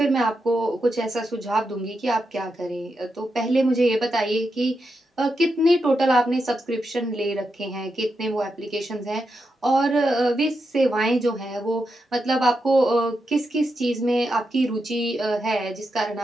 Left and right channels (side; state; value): both; normal; correlation 0.86